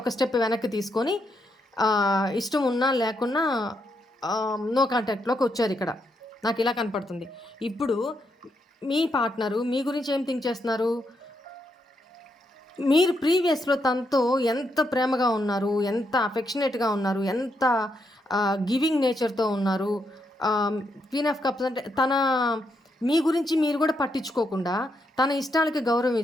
స్టెప్ వెనక్కి తీసుకొని ఇష్టం ఉన్నా లేకున్నా నో కాంటాక్ట్‌లోకి వచ్చారు ఇక్కడ. నాకు ఇలా కనపడుతుంది. ఇప్పుడు మీ పార్ట్నరు మీ గురించి ఏం థింక్ చేస్తున్నారు? మీరు ప్రీవియస్‌లో తనతో ఎంత ప్రేమగా ఉన్నారు, ఎంత అఫెక్షనేట్‌గా ఉన్నారు, ఎంత గివింగ్ నేచర్‌తో ఉన్నారు. క్వీన్ ఆఫ్ కప్స్ అంటే మీ గురించి మీరు కూడా పట్టించుకోకుండా తన ఇష్టాలకి గౌరవం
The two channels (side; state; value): both; normal; correlation 0.80